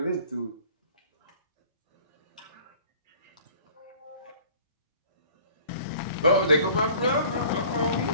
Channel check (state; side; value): inverted; both; correlation -0.49